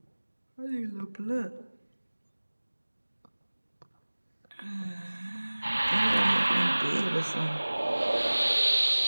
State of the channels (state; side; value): inverted; both; correlation -1.00